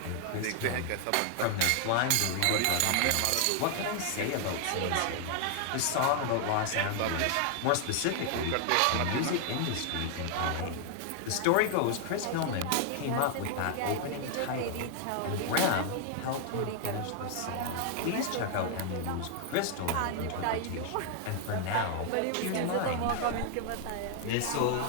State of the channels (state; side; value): different; both; correlation 0.00